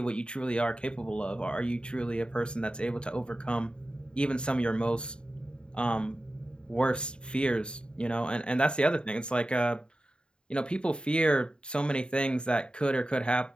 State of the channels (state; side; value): late; right; 0.051 ms